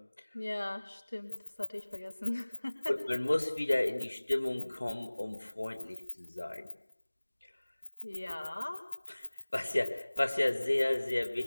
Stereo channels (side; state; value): both; inverted; correlation -1.00